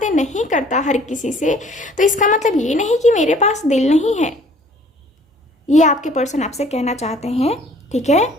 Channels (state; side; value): normal; both; correlation 0.55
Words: नहीं करता हर किसी से। तो इसका मतलब ये नहीं कि मेरे पास दिल नहीं है। ये आपके पर्सन आपसे कहना चाहते हैं, ठीक है।